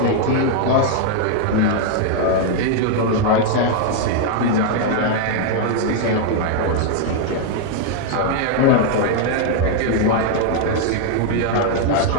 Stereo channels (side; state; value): both; different; correlation 0.00